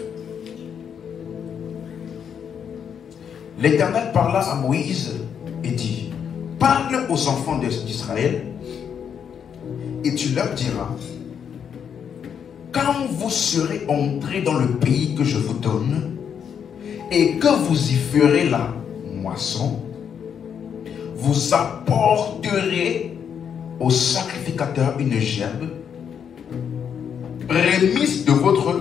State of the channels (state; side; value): quieter; right; 7.8 dB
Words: L'Éternel parla à Moïse et dit, parle aux enfants d'Israël et tu leur diras, quand vous serez entrés dans le pays que je vous donne et que vous y ferez la moisson, vous apporterez au sacrificateur une gerbe, prémisse de votre